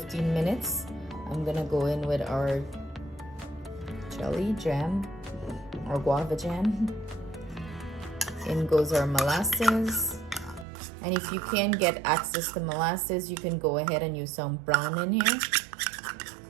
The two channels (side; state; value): left; drops out; at 10.7 s